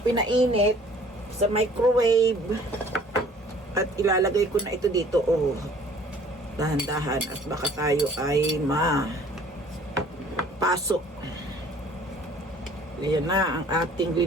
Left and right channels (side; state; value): both; normal; correlation 0.53